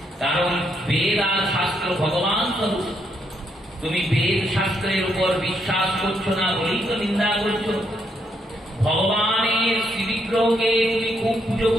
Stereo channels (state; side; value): normal; both; correlation 0.76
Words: কারণ বেদ আর শাস্ত্র ভগবান স্বরূপ। তুমি বেদ শাস্ত্রের উপর বিশ্বাস করছো না বলেই তো নিন্দা করছো। ভগবানের শ্রীবিগ্রহকে তুমি খুব পুজো